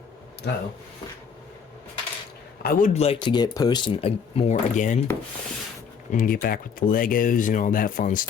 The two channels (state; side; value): quieter; right; 6.5 dB